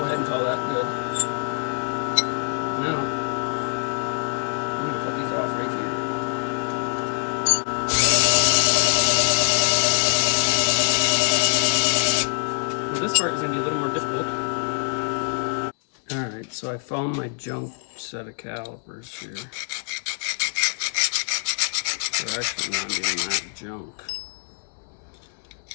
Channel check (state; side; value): silent; right; digital silence